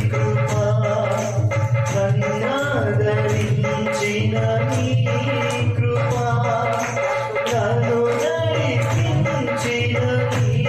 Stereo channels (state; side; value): noise; left; rumble, 28 dB below the sound